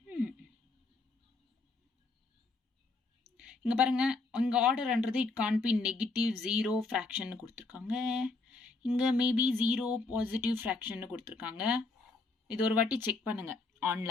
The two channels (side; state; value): right; quieter; 3.6 dB